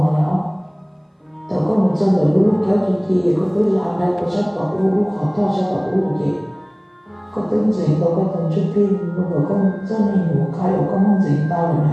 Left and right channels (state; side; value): identical; both; correlation 1.00